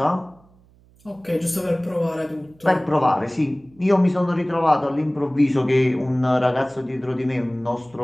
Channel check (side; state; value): right; noise; hum, 30 dB below the sound